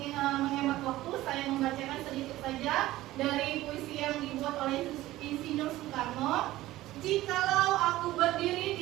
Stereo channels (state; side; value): quieter; left; 16.3 dB